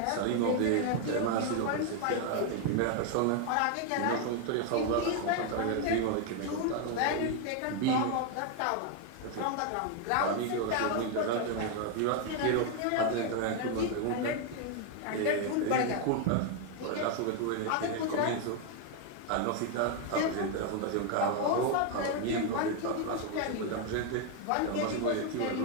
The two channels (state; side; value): different; both; correlation 0.01